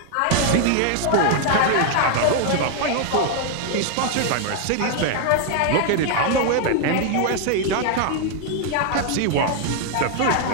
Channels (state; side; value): different; both; correlation 0.00